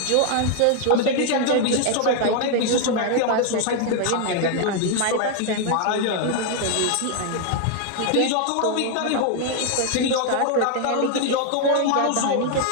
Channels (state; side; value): different; both; correlation 0.00